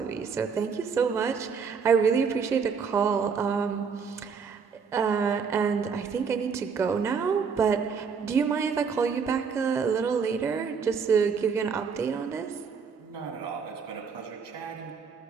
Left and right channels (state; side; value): quieter; left; 5.9 dB